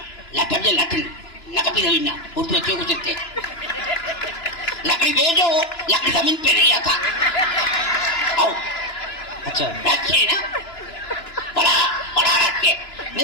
लकड़ी ना उर्दू अच्छे को सकते लकड़ी भेजो लकड़ी जमीन पे नहीं आता। आओ अच्छा रखिए ना बड़ा रखे।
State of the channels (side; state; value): right; late; 2.9 ms